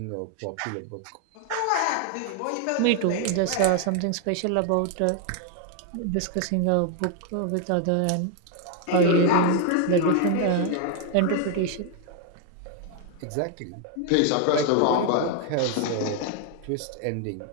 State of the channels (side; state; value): both; different; correlation 0.00